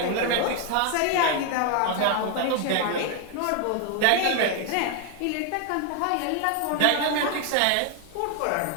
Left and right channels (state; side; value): different; both; correlation 0.01